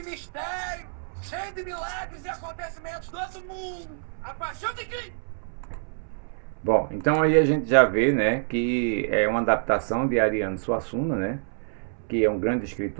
mistério, cheio de milagres e acontecimentos do outro mundo. A Paixão de Cristo. Bom, então aí a gente já vê, né, que é uma adaptação de Ariano Suassuna, né, que é um grande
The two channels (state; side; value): silent; left; 60 dB below the other